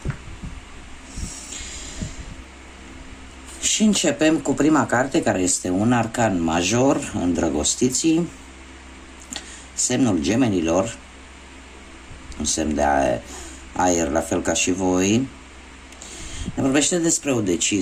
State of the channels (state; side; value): identical; both; correlation 1.00